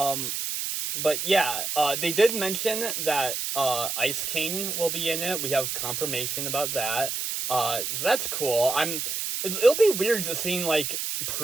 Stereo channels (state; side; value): noise; right; hiss, 3 dB below the sound